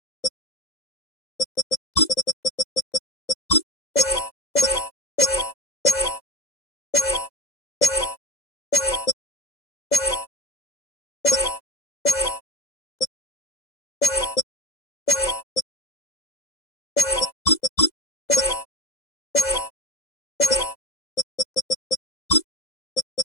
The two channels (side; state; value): right; late; 2.0 ms